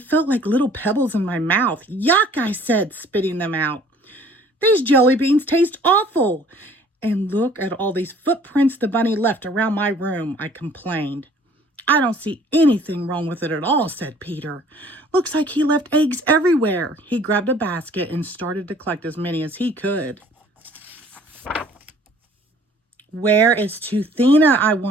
like little pebbles in my mouth. Yuck, I said, spitting them out. These jelly beans taste awful. And look at all these footprints the bunny left around my room, I complained. I don't see anything wrong with it at all, said Peter. Looks like he left eggs everywhere. He grabbed a basket and started to collect as many as he could. Where is Toothina? I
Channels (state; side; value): normal; both; correlation 0.54